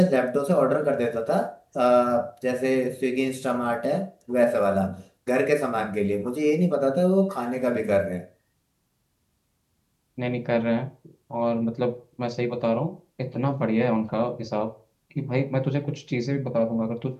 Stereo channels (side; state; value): both; identical; correlation 1.00